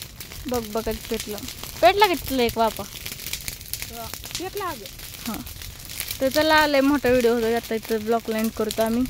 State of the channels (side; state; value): both; identical; correlation 1.00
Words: बघ बघत पेटलं पेटला का तिथलं एक वापा पितलं अगं हां तर चला लय मोठा व्हिडिओ होता आता इथं ब्लॉक लाईन करतो आम्ही